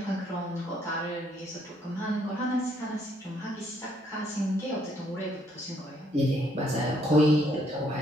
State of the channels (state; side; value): normal; both; correlation 0.69